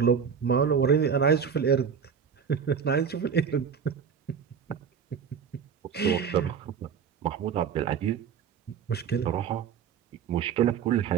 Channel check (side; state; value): left; quieter; 7.1 dB